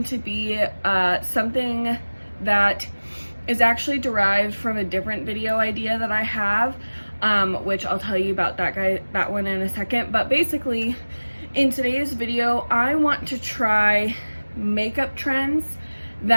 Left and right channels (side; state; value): both; inverted; correlation -1.00